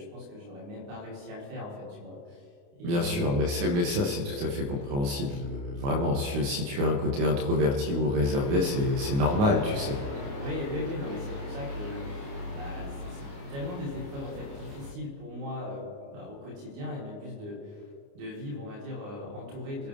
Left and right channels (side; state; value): left; late; 29 ms